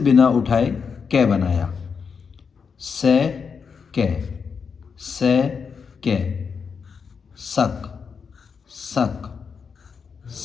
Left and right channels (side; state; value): right; quieter; 6.0 dB